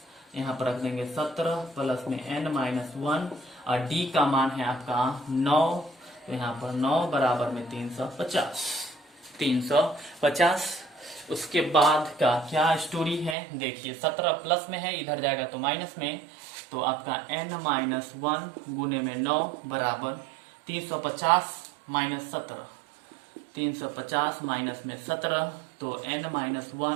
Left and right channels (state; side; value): drops out; left; at 13.4 s